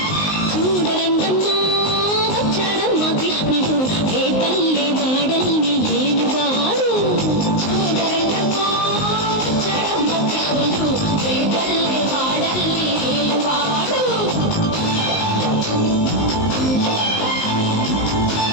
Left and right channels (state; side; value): late; right; 19 ms